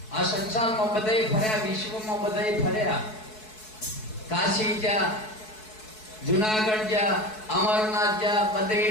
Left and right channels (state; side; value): late; right; 4.6 ms